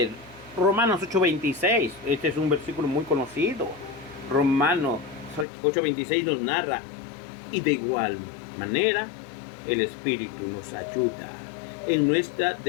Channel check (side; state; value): right; drops out; at 5.5 s